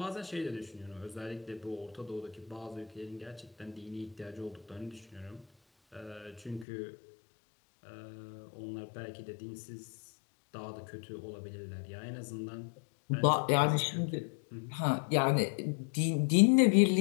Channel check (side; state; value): right; drops out; at 6.7 s